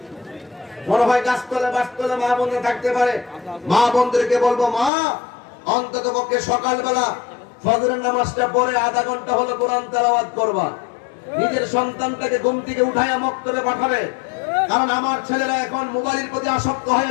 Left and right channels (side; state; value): right; drops out; at 4.9 s